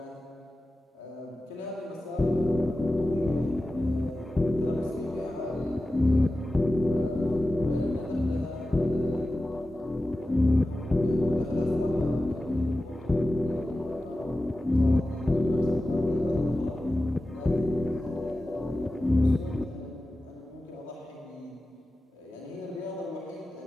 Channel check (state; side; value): normal; both; correlation 0.94